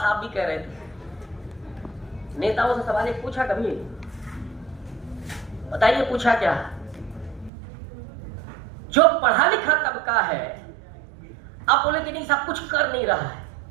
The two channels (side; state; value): left; drops out; at 7.5 s